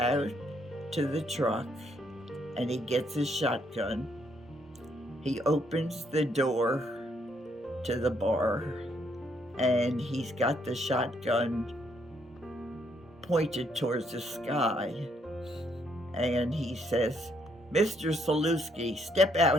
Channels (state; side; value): normal; both; correlation 0.72